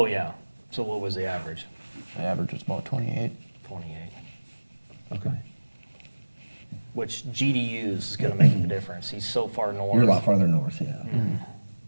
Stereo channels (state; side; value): inverted; both; correlation -1.00